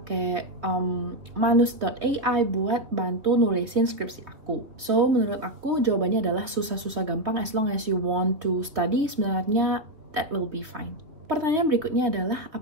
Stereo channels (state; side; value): late; left; 2.9 ms